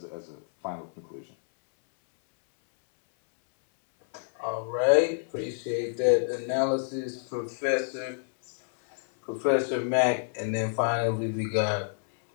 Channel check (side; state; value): right; silent; 59 dB below the other